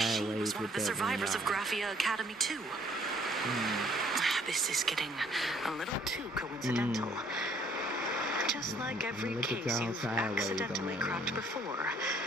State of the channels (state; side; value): normal; both; correlation 0.61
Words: She was one with of the that survivors of one, Graphia Academy too. This is getting a little too coincidental. Just like every look at case y'all you've sideways accidentally on cracked that. before.